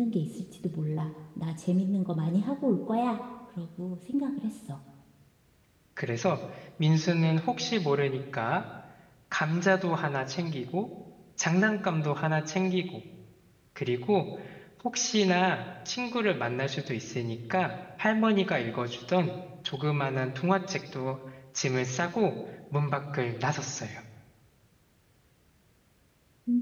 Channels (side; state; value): both; identical; correlation 1.00